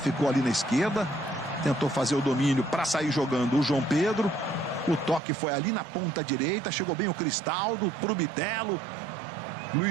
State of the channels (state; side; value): drops out; left; at 5.2 s